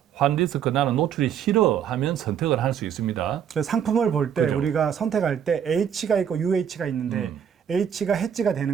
환 리스크 나는 노출이 싫어 하면 선택을 할 수 있습니다. 그래서 상품을 볼 때 그죠. 우리가 선택할 때 H가 있고 UH가 있는데 H가 해지가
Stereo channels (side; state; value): left; quieter; 8.6 dB